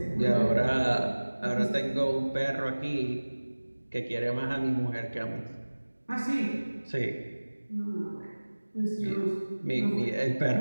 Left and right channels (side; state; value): both; inverted; correlation -1.00